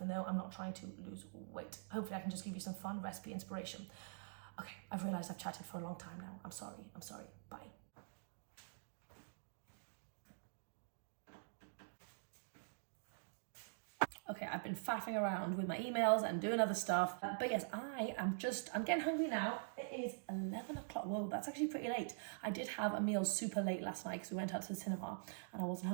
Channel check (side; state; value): left; silent; digital silence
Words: though I'm not trying to lose weight. Hopefully I can just give you some fun recipe inspiration. Okay, I've realized I've chatted for a long time now. I'm sorry. Bye. Okay, I've been faffing around with my emails and doing other stuff. But yes, I'm getting hungry now. It is 11 o'clock. Whoa, that's actually pretty late. I did have a meal super late last night because we went out to the cinema and I wasn't